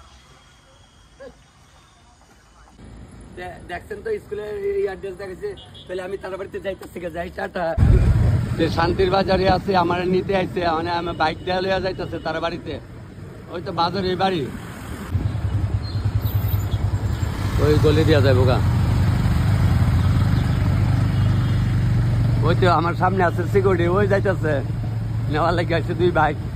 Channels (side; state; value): both; identical; correlation 1.00